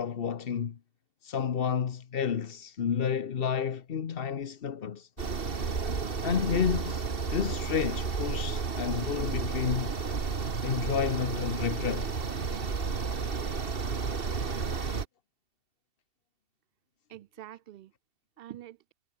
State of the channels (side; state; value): right; late; 2.7 ms